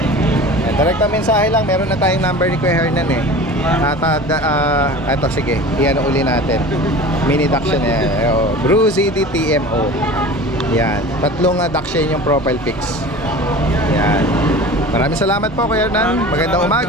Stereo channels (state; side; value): normal; both; correlation 0.37